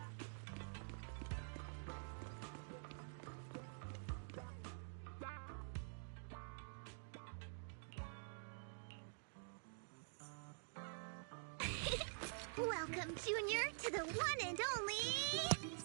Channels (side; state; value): left; silent; digital silence